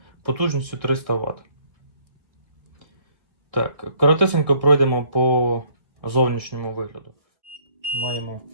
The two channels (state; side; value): late; left; 1.4 ms